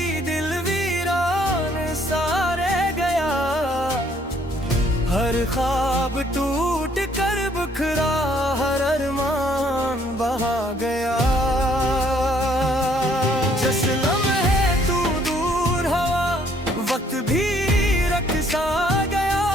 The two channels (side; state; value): both; normal; correlation 0.64